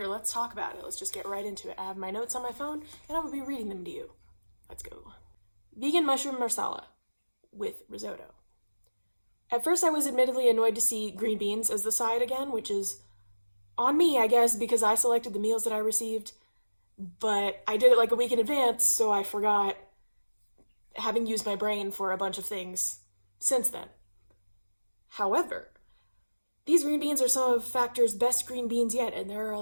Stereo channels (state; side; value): inverted; both; correlation -1.00